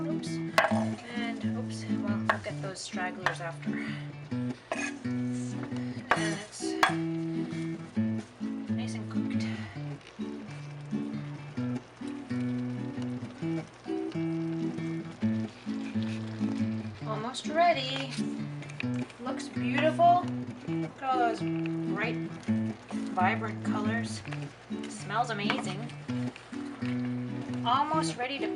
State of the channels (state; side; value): identical; both; correlation 1.00